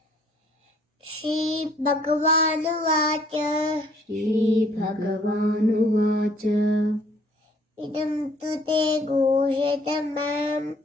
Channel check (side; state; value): both; normal; correlation 0.60